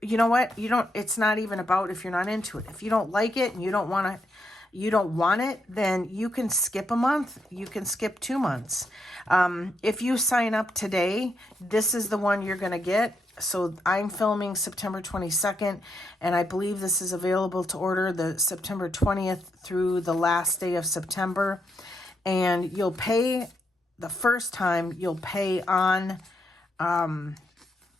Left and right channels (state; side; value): normal; both; correlation 0.80